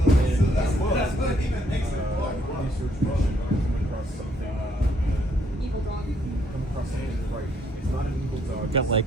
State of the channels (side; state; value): both; normal; correlation 0.69